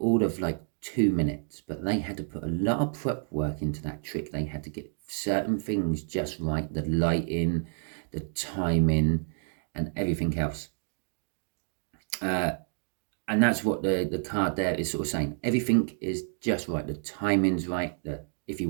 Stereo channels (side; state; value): left; silent; digital silence